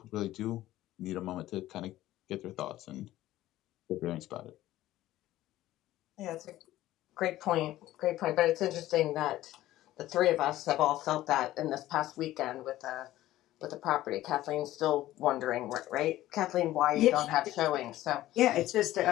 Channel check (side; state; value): right; quieter; 15.0 dB